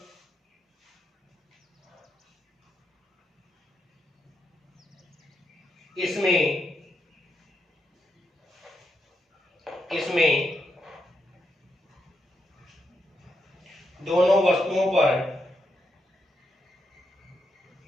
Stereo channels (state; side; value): normal; both; correlation 0.82